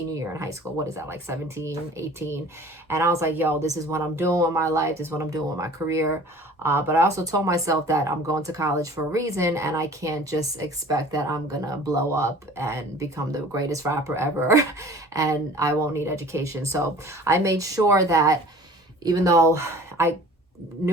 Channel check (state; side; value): normal; both; correlation 0.46